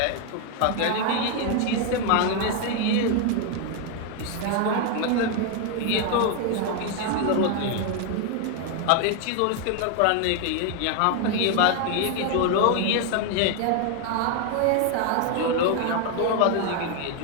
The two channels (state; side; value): different; both; correlation 0.01